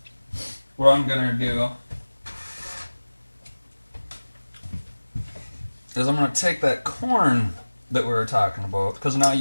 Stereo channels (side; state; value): both; inverted; correlation -1.00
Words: what I'm gonna do is I'm gonna take that corn that we were talking about, because now